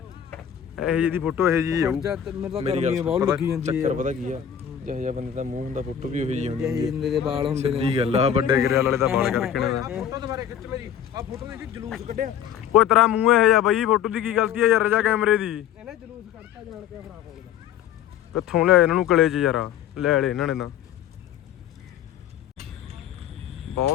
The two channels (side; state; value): right; quieter; 9.3 dB